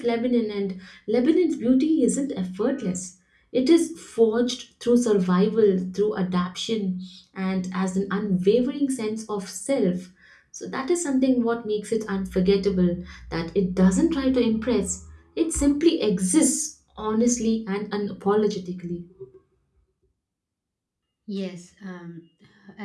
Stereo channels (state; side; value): identical; both; correlation 1.00